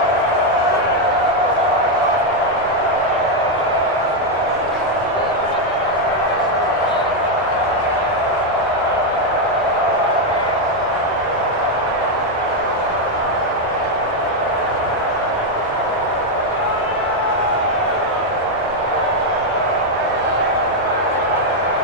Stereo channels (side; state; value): both; normal; correlation 0.02